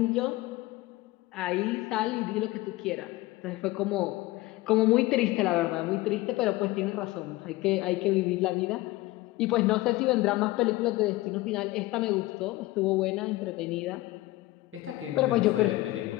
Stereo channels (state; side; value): quieter; right; 18.9 dB